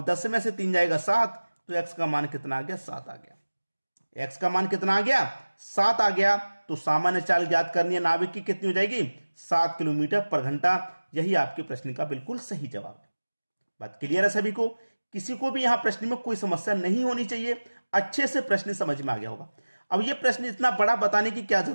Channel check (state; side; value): inverted; both; correlation -1.00